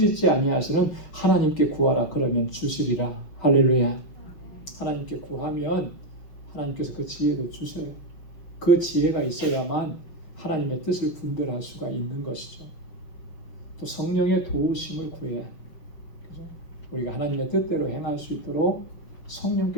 아니하시는 하나님께 구하라 그러면 주시리라. 할렐루야. 하나님께 구하면 하나님께서 그 지혜도 주셔요. 그 지혜가 있어야만 하나님의 뜻을 분별할 수가 있는 것이죠. 또 성령의 도우심을 구해야 그죠? 우리가 하나님의 뜻대로 행할 수 있도록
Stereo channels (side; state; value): right; late; 5.8 ms